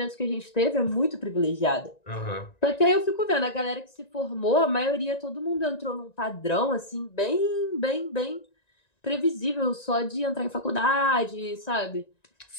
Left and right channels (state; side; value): late; right; 1.9 ms